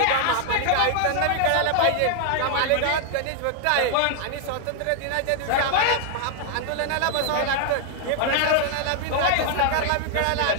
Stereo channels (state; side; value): different; both; correlation 0.00